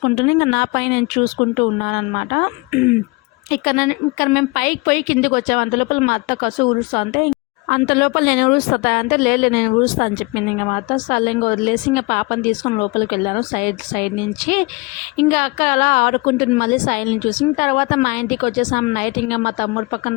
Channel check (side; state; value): right; quieter; 26.6 dB